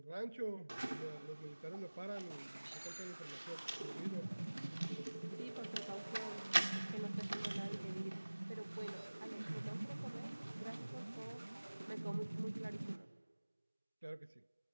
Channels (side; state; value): both; inverted; correlation -1.00